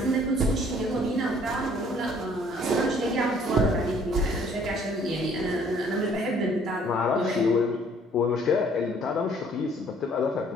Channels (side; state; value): both; normal; correlation 0.59